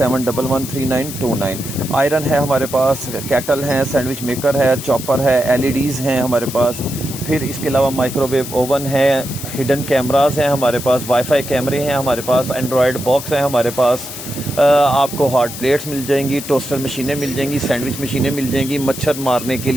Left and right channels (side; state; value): left; noise; hiss, 10 dB below the sound